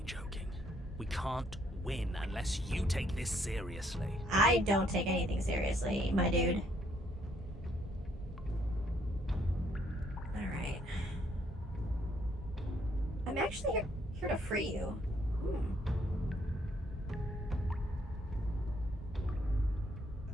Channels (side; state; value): both; normal; correlation 0.69